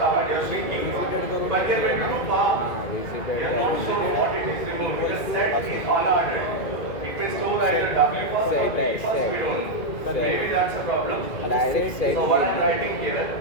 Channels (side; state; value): right; late; 2.1 ms